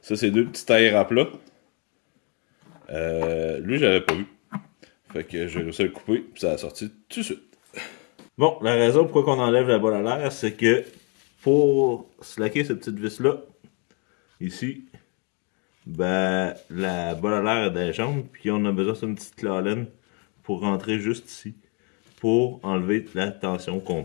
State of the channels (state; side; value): quieter; right; 35.0 dB